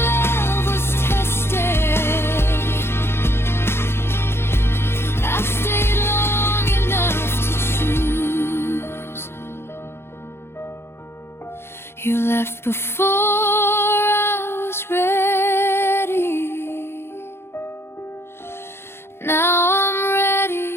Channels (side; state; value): right; late; 0.12 ms